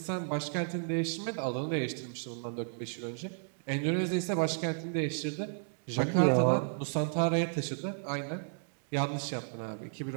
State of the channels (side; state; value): left; silent; digital silence